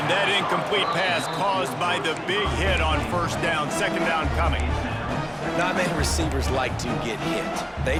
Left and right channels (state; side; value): identical; both; correlation 1.00